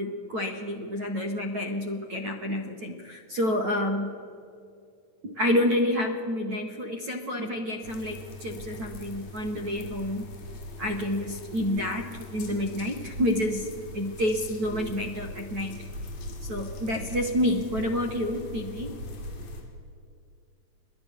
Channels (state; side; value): late; left; 9.2 ms